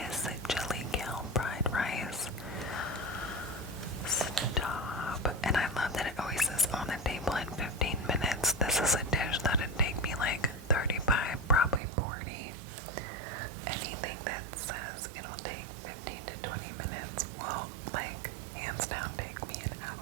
chili kale fried rice. Stop. And I love that it always says on the table in 15 minutes. This is a dish that'd take me like 35, probably 40. Anything that says it'll take 15 to 20 minutes will, like, hands down take me an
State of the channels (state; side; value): drops out; left; at 11.8 s